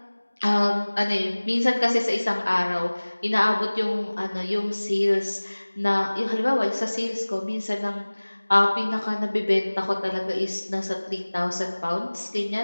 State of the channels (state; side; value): inverted; both; correlation -1.00